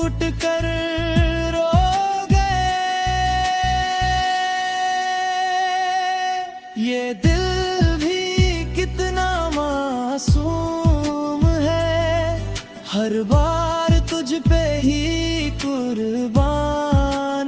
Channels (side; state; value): both; identical; correlation 1.00